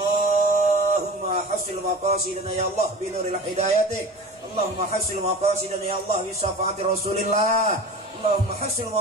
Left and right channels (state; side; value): normal; both; correlation 0.35